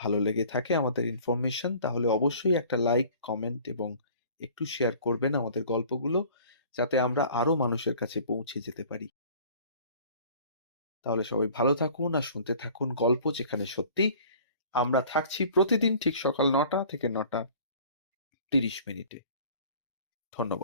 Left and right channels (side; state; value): both; inverted; correlation -0.49